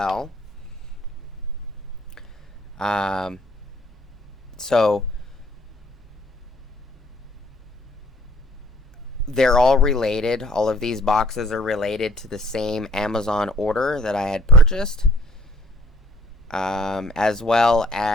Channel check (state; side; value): normal; both; correlation 0.58